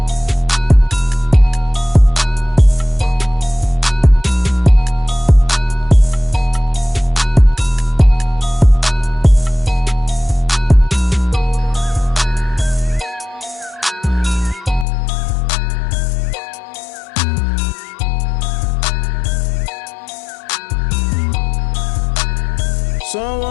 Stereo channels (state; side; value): drops out; right; at 14.9 s